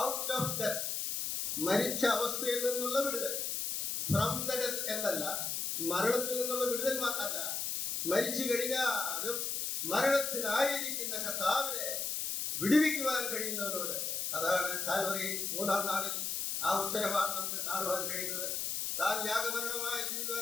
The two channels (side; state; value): left; noise; hiss, 1 dB below the sound